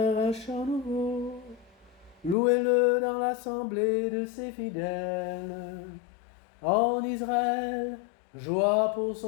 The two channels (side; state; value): right; drops out; at 2.4 s